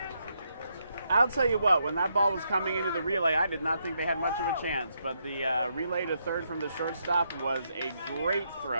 I'll tell you what, when that ball was coming into the relay, I did not think they had much of a chance, but the relay to third from the shortstop was a great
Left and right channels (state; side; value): inverted; both; correlation -0.78